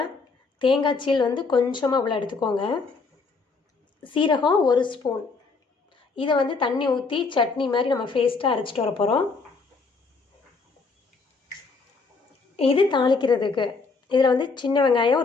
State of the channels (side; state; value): right; quieter; 4.3 dB